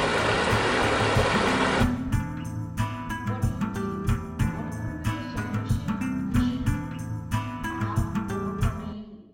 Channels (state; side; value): identical; both; correlation 1.00